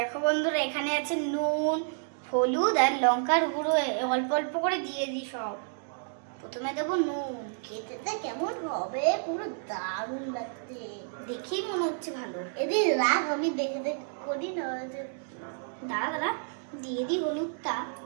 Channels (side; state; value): left; silent; digital silence